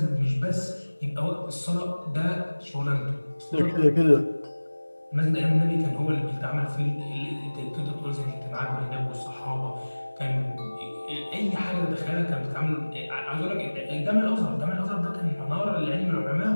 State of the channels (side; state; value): both; inverted; correlation -1.00